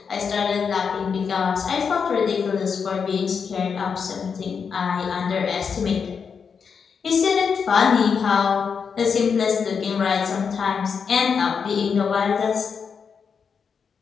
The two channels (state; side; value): quieter; right; 6.2 dB